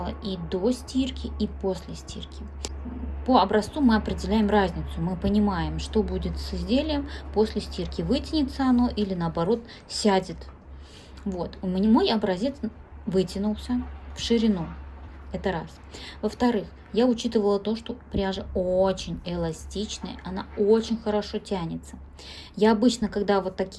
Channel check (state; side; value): identical; both; correlation 1.00